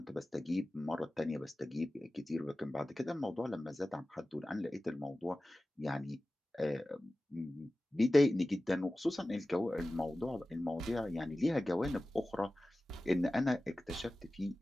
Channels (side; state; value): both; normal; correlation 0.96